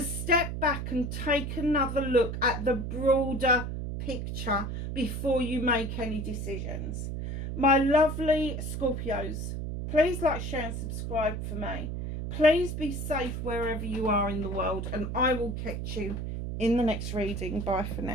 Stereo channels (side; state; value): right; noise; hum, 4 dB below the sound